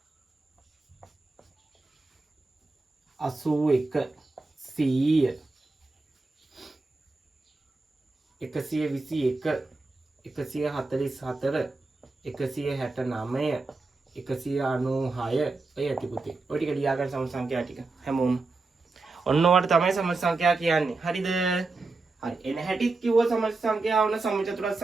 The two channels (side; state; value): left; quieter; 3.6 dB